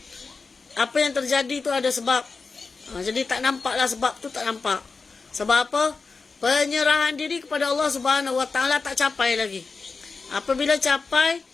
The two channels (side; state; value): right; quieter; 4.4 dB